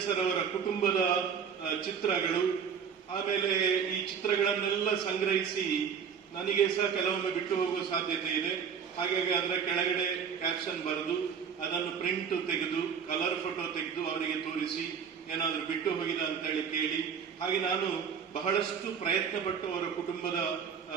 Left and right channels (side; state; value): left; quieter; 7.0 dB